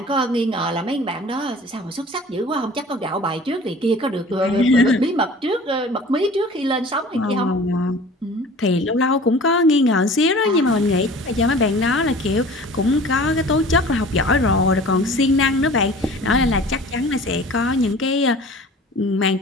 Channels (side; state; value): both; normal; correlation 0.44